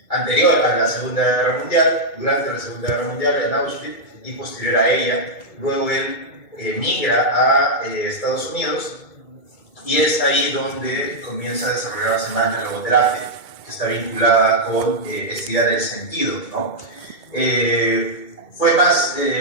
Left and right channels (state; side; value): late; right; 2.2 ms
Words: anterior a la Segunda Guerra Mundial, durante la Segunda Guerra Mundial en Auschwitz y posterior a ella. Luego él migra a Estados Unidos y es ahí donde comienza a desarrollarse más la logoterapia, que está vinculada con esta idea del sentido, ¿no? Fue más